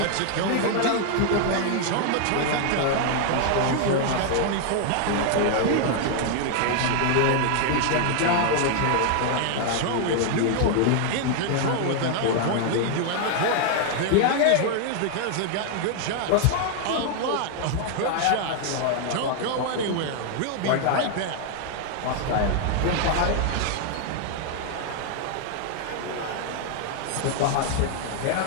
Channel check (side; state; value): both; different; correlation 0.00